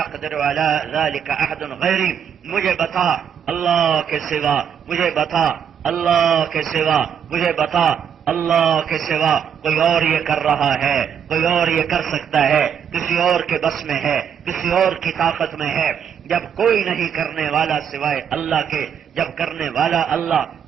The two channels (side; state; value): left; quieter; 8.1 dB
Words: على ذلك احد غیری، مجھے بتا اللہ کے سوا، مجھے بتا اللہ کے سوا، مجھے بتا اللہ کے سوا کوئی اور یہ کر رہا ہے، کوئی اور یہ کر سکتا ہے، کسی اور کے بس میں ہے، کسی اور کی طاقت میں ہے، جب کوئی نہیں کرنے والا سوائے اللہ کے، جب کرنے والا اللہ،